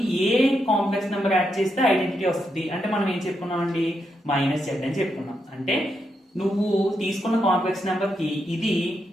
ఏ కాంప్లెక్స్ నెంబర్ యాడ్ చేస్తే ఐడెంటిటీ వస్తుంది అంటే మనం ఏం చెప్పుకున్నాం అండి -z అని చెప్పుకున్నాం. అంటే నువ్వు తీసుకున్న కాంప్లెక్స్ నెంబర్ కి ఇది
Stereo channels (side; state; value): both; normal; correlation 0.82